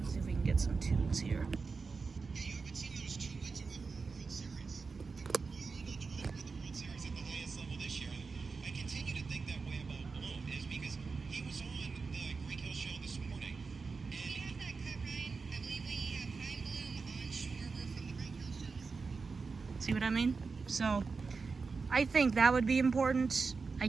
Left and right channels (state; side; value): quieter; left; 4.6 dB